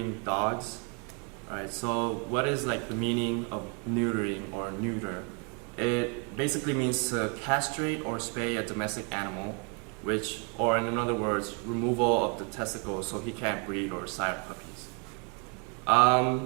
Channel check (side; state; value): left; quieter; 35.9 dB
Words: dogs. Alright, so what is like the meaning of neutering or neuter? It basically means to castrate or spay a domestic animal, which, or in other words, removal of the testicles so he can't breed or sire puppies.